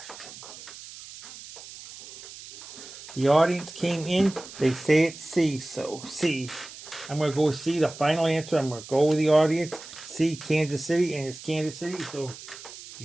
The audience came in. They say it's C, so C. I'm going to go with C, the final answer. I'm going to go with the audience. C, Kansas City, and it's Kansas City, so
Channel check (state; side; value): noise; right; hiss, 15 dB below the sound